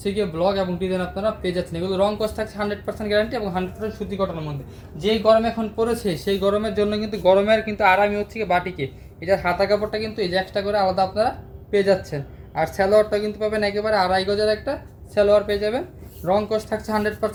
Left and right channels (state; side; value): identical; both; correlation 1.00